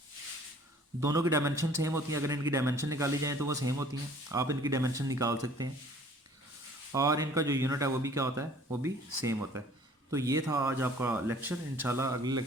दोनों की डायमेंशन सेम होती हैं। अगर इनकी डायमेंशन निकाली जाए तो वो सेम होती हैं, आप इनकी डायमेंशन निकाल सकते हैं और इनका जो यूनिट है वो भी क्या होता है, वो भी सेम होता है। तो ये था आज आपका लेक्चर। इंशाल्लाह अगले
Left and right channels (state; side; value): normal; both; correlation 0.53